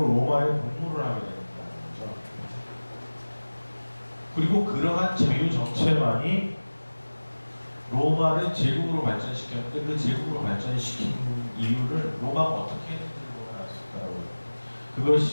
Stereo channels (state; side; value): inverted; both; correlation -1.00